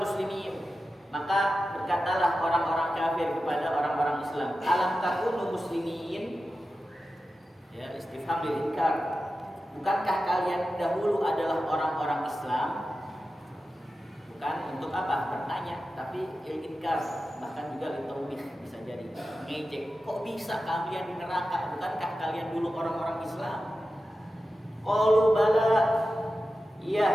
maka berkatalah orang-orang kafir kepada orang-orang Islam, alam takunu muslimin? Istifham lil inkar. Bukankah kalian dahulu adalah orang-orang Islam? Bukan untuk apa? Bertanya, tapi inkar, bahkan juga litaubih, bisa jadi ngejek. Kok bisa kalian di neraka? Bukankah kalian dulu orang-orang Islam? Qalu bala, iya,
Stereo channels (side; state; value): both; normal; correlation 0.93